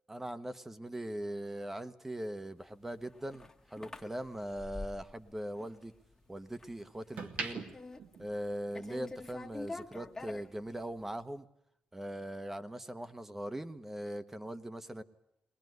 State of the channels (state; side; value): normal; both; correlation 0.92